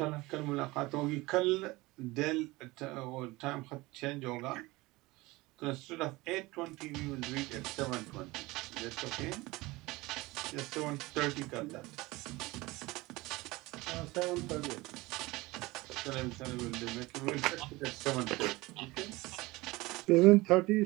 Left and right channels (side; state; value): left; quieter; 21.2 dB